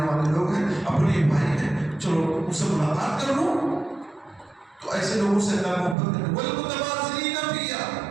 والے لوگ ہیں، اپنے بھائی ہیں، چلو ان سے ملاقات کر لوں. تو ایسے لوگوں سے اللہ محبت کرے. والمتباذلین فیا،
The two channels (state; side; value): drops out; left; at 6.0 s